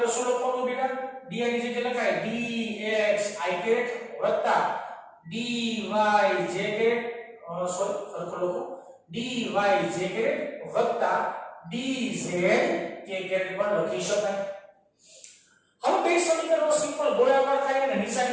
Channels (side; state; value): both; identical; correlation 1.00